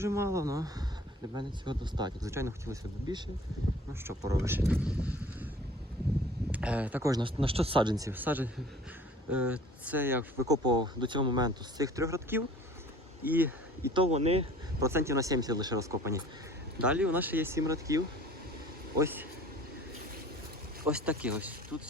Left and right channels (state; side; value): normal; both; correlation 0.48